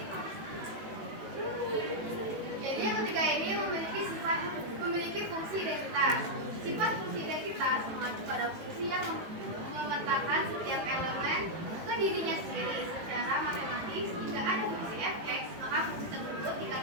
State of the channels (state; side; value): late; left; 18 ms